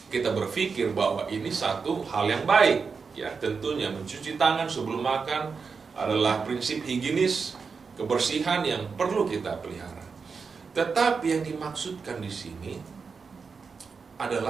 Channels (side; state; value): left; quieter; 5.2 dB